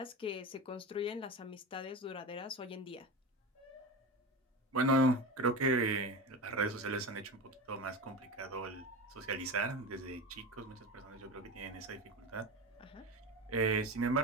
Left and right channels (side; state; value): both; normal; correlation 0.25